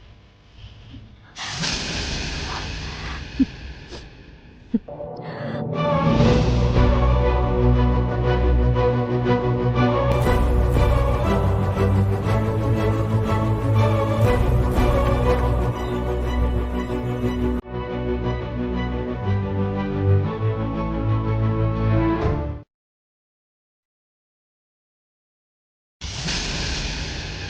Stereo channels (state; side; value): identical; both; correlation 1.00